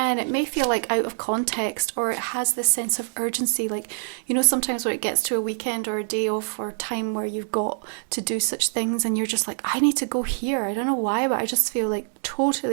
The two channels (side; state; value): left; silent; digital silence